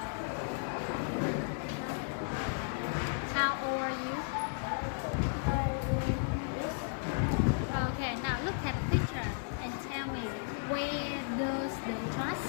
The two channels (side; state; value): right; silent; digital silence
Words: How old are you? Okay, now look at the picture and tell me where does the trust?